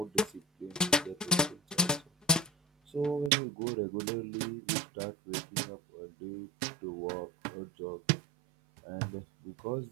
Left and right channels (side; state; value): left; drops out; at 3.3 s